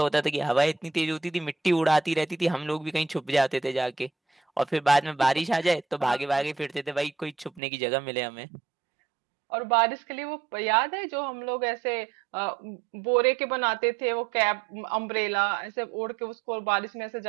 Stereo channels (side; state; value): left; drops out; at 7.6 s